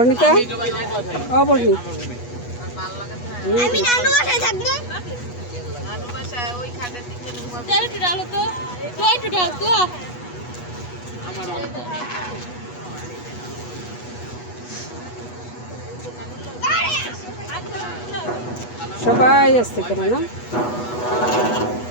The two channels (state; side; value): late; right; 8.2 ms